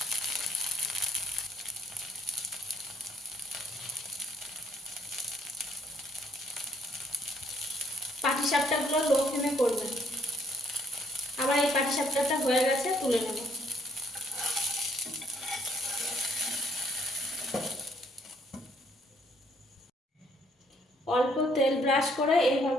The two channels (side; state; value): both; normal; correlation 0.66